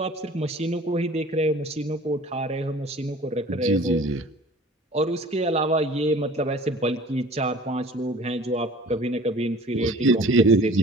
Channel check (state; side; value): normal; both; correlation 0.46